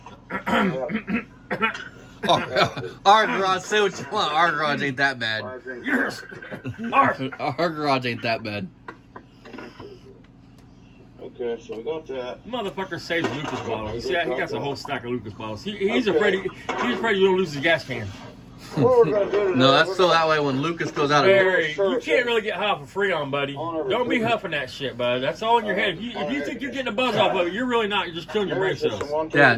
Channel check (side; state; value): both; identical; correlation 1.00